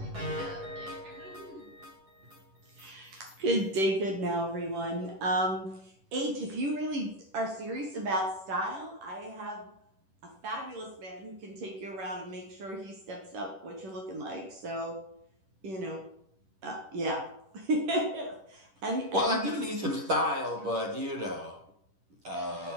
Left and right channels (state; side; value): late; left; 10 ms